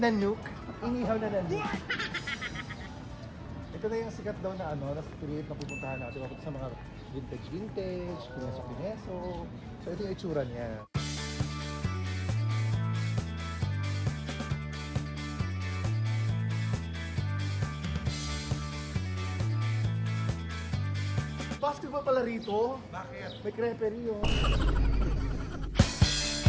Inihaw na nanok. Ito na yung sikat daw na na street na pupuntahan natin. Makita sa mga vintage, kineso. So ito yung itsura niya. Basketball pala rito. Bakit? May creperie yun.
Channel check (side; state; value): both; identical; correlation 1.00